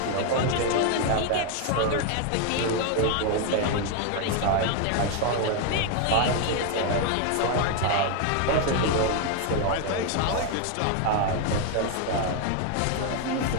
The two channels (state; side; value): different; both; correlation 0.01